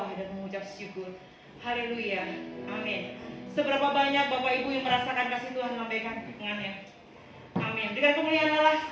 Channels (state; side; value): identical; both; correlation 1.00